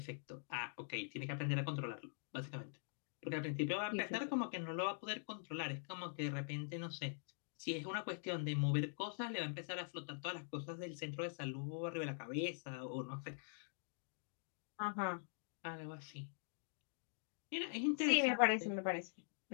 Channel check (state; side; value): silent; right; digital silence